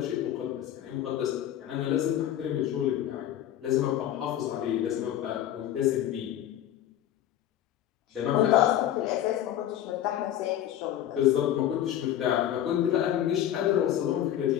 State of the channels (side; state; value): right; quieter; 11.6 dB